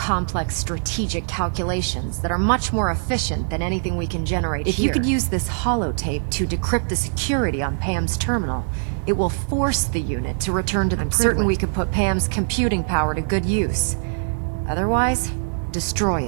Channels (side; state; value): left; silent; digital silence